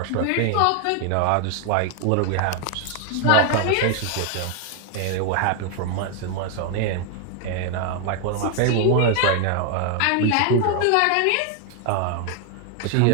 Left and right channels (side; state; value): both; different; correlation 0.00